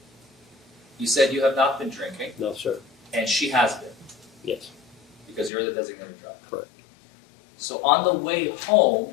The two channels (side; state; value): right; drops out; at 5.5 s